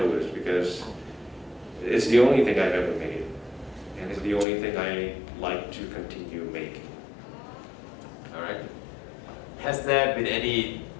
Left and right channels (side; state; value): right; drops out; at 4.5 s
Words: because it's the only thing I've ever made, and it's the only thing I like to continue making. All right. Has there been any